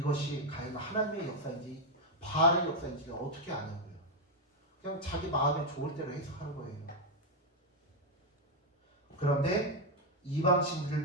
과연 하나님의 역사인지 바알의 역사인지를 어떻게 아냐고요. 그냥 자기 마음에 좋을 대로 해석하는 거예요. 그런데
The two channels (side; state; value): both; normal; correlation 0.03